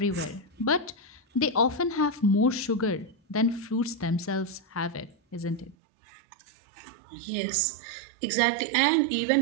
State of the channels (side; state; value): left; drops out; at 5.8 s